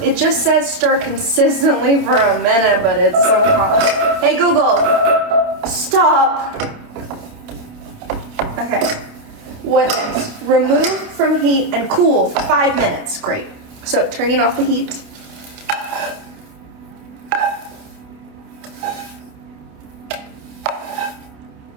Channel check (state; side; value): late; left; 28 ms